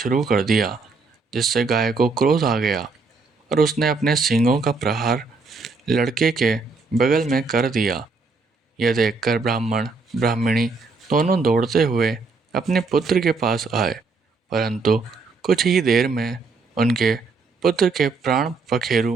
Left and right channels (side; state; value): left; quieter; 4.1 dB